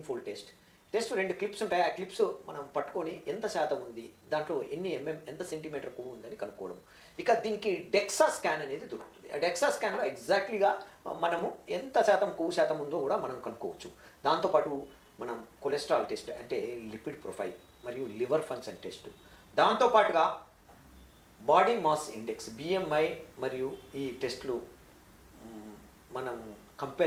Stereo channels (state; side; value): identical; both; correlation 1.00